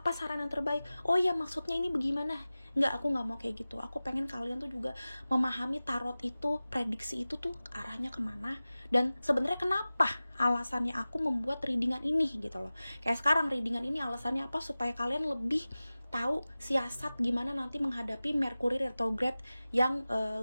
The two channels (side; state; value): both; inverted; correlation -0.97